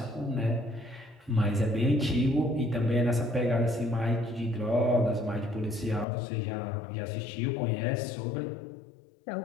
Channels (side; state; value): right; drops out; at 6.1 s